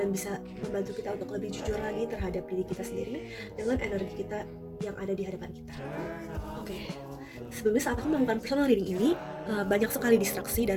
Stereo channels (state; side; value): identical; both; correlation 1.00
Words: bisa membantu kita untuk lebih jujur lagi terhadap diri kita sendiri dengan energi kita yang ada di hadapan kita. Oke. Sebelumnya saat aku melakukan personal reading ini, banyak sekali distraksi